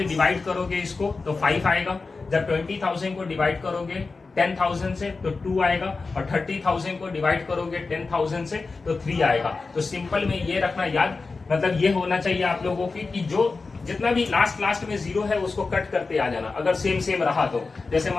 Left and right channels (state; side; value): quieter; right; 4.1 dB